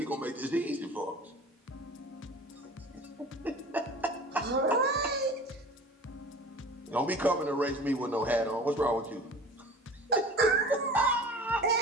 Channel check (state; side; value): normal; both; correlation 0.40